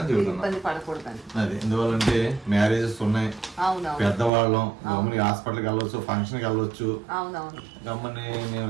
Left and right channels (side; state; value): left; drops out; at 4.3 s